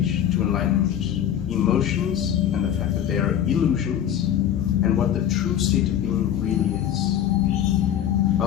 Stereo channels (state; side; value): quieter; right; 10.2 dB